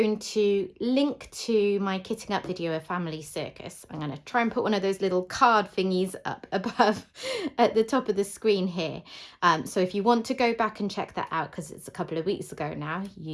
to link to my kitting up video of Family Circus. I'm going to try and put one of those little card thingies up above at the top of the screen here. So if you want to go back and check that out, because it's a couple of weeks ago now,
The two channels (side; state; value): both; identical; correlation 1.00